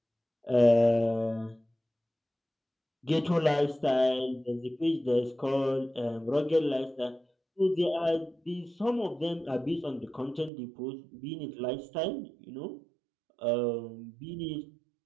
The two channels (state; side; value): drops out; left; at 10.5 s